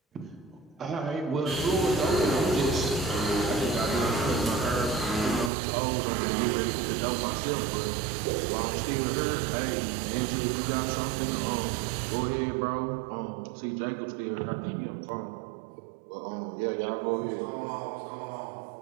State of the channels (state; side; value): drops out; left; at 5.5 s